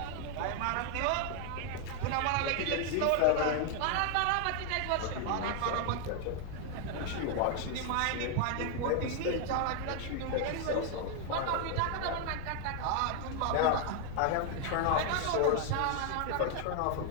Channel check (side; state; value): both; different; correlation 0.00